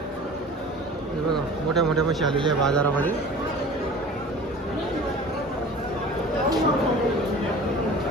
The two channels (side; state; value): both; normal; correlation 0.41